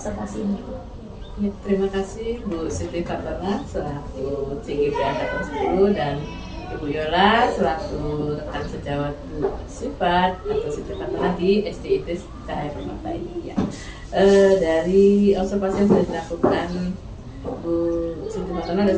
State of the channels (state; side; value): identical; both; correlation 1.00